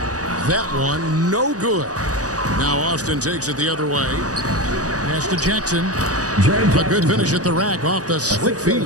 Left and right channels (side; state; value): left; late; 0.67 ms